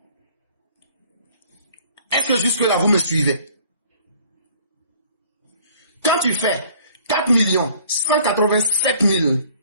Est-ce que jusque-là, vous me suivez? Quand tu fais 4 187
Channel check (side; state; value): both; inverted; correlation -0.56